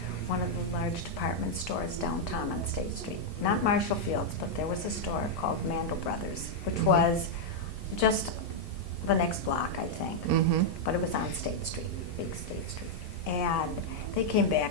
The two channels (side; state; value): both; normal; correlation -0.03